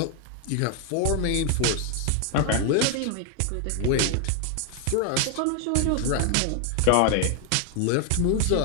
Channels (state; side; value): different; both; correlation 0.00